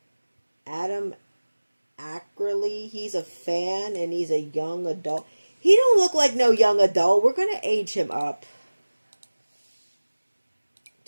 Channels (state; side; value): inverted; both; correlation -1.00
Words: Adam Ackerley. He's a fan and he's a young adult. He don't look like no young adult. We're going to age him up